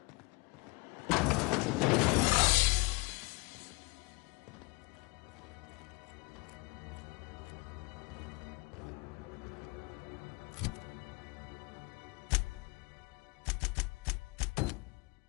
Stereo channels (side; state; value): right; quieter; 26.9 dB